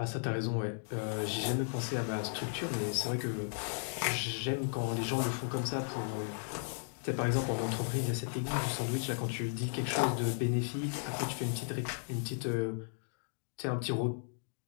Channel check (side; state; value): right; silent; digital silence